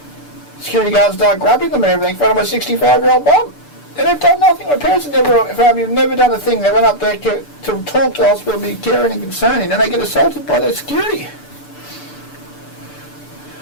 Security guards start grabbing them and everything in front of my 65-year-old mum. And they've done nothing. My parents have never done a thing. They went up there to talk to the hospital, be caring and concerning, and they get assaulted by their security.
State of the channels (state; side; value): late; right; 6.8 ms